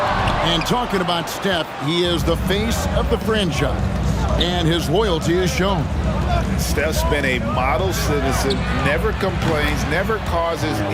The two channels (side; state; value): both; identical; correlation 1.00